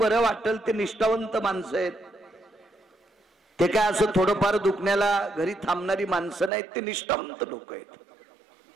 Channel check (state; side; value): drops out; left; at 6.5 s